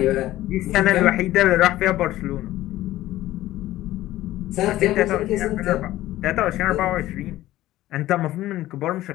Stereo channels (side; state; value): right; quieter; 15.4 dB